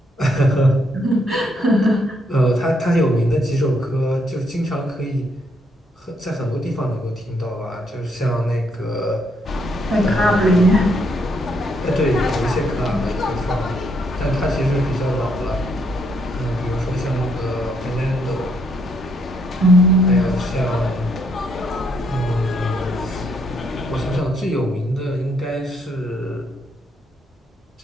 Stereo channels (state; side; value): normal; both; correlation 0.73